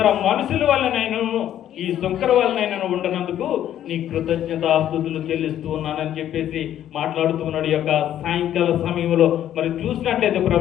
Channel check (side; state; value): right; quieter; 11.3 dB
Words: మనుషుల వల్లనైనను ఈ సుంకర వల్లనైనా ఉండనందుకు నీ కృతజ్ఞతాస్తుతులు చెల్లిస్తూ ఉన్నానని చెప్పేసి మాట్లాడుతూ ఉన్నాడు. ఈ యొక్క సాయంకాల సమయంలో మరి చూసినట్లయితే